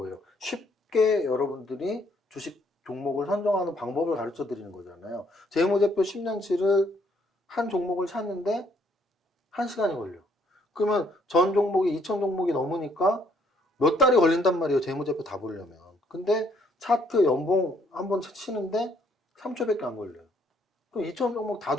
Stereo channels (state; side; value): normal; both; correlation 0.67